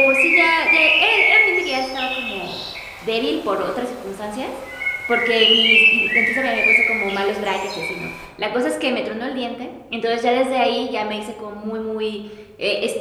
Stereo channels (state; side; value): identical; both; correlation 1.00